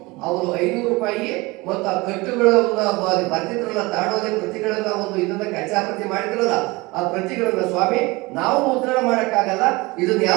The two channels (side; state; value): left; quieter; 23.3 dB